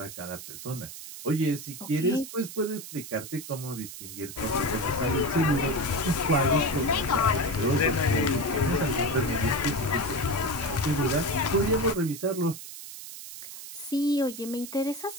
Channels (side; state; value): right; noise; hiss, 12 dB below the sound